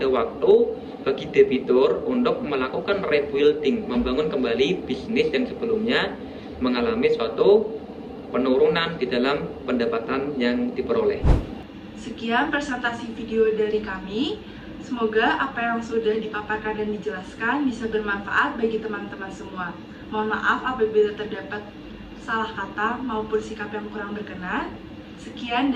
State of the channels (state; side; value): identical; both; correlation 1.00